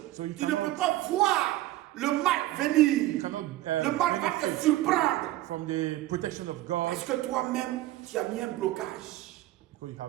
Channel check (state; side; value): quieter; left; 16.0 dB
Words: So you Tu ne cannot- peux pas voir le mal venir. You cannot Le mal va te benefit surprendre. from the protection of God Parce que toi-même, tu as mis un blocage. because you